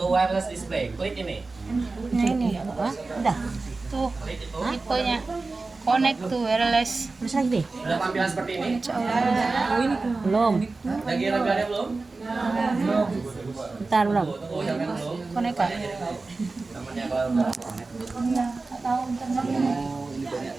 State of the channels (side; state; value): left; quieter; 3.7 dB